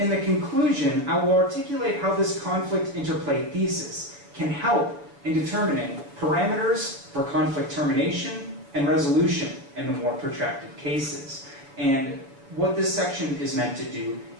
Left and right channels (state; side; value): late; left; 7.0 ms